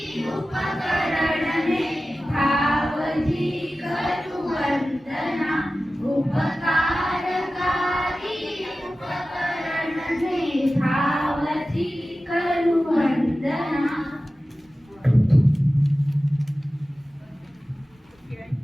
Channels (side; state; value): both; normal; correlation 0.95